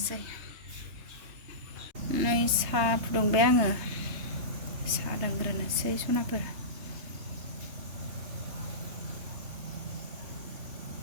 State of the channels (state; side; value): late; left; 3.3 ms